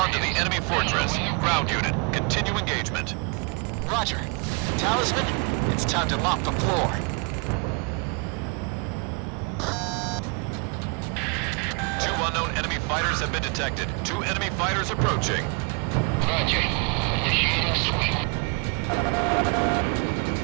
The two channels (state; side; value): quieter; left; 33.4 dB